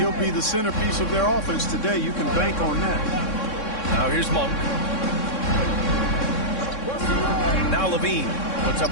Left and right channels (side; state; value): right; late; 3.6 ms